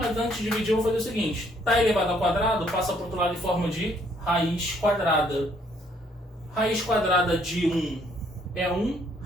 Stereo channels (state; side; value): normal; both; correlation 0.66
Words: antes de dividir eu vou fazer o seguinte. Está elevado ao quadrado, passa para o outro lado em forma de raiz quadrada. Raiz quadrada de 1 é 1,